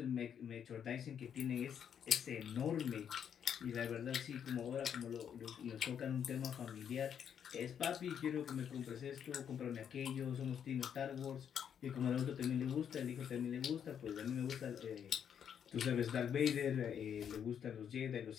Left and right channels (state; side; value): quieter; right; 8.4 dB